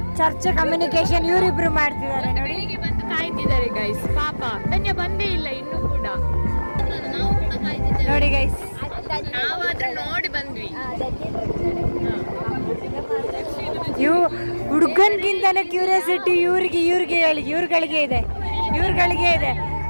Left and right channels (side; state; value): both; inverted; correlation -1.00